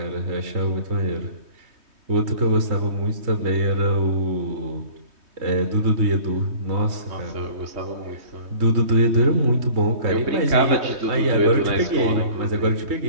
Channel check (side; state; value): left; late; 3.2 ms